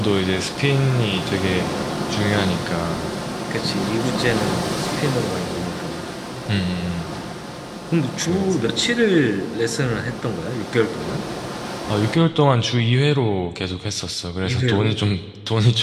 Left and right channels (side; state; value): both; identical; correlation 1.00